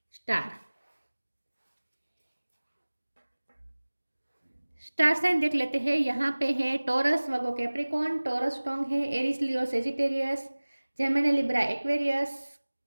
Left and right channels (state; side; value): inverted; both; correlation -1.00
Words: स्टार। स्टार साइन देख लेते हैं। यहाँ पे है Taurus, Virgo, Capricorn. Taurus strong है, Aries, Leo, Sagittarius, Gemini, Libra, Aquarius,